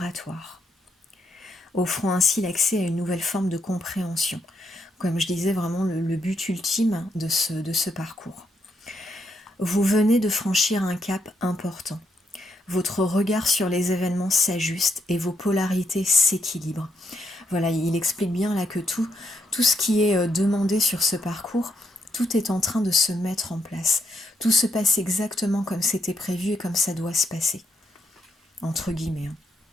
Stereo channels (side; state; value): both; normal; correlation 0.78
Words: offrant ainsi l'accès à une nouvelle forme de compréhension. comme je disais, vraiment le but ultime de ce parcours. Vous venez de franchir un cap important. Votre regard sur les événements s'ajuste et vos polarités s'équilibrent. Voilà, il explique bien là que tout ce qui est demandé sur ce parcours, tout est en train de se mettre en place. Tout se passe exactement comme c'était prévu et comme ça doit se passer. Entre guillemets.